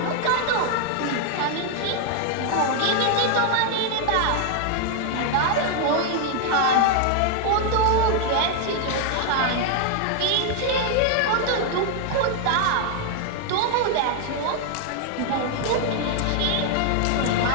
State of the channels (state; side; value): different; both; correlation 0.00